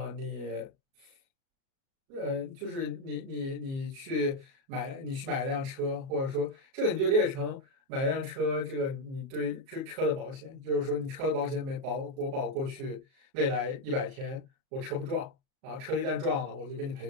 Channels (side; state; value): left; late; 37 ms